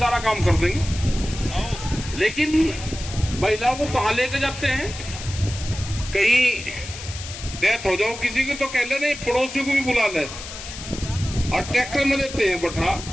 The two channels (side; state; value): left; noise; hiss, 11 dB below the sound